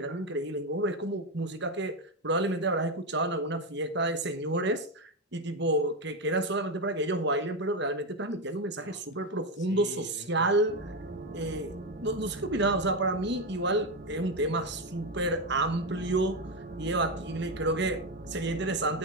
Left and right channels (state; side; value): normal; both; correlation 0.10